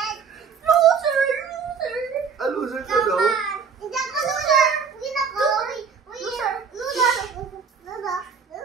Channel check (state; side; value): quieter; left; 6.2 dB